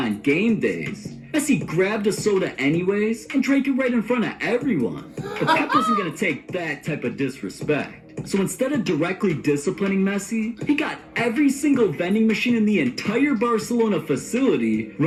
game days. Messi grabbed a soda anyways and drank it right in front of everyone. But Pep wasn't going to take that type of disrespect. So instead of directly disciplining Messi, he got every single vending machine in the entire Barcelona facility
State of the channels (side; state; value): both; identical; correlation 1.00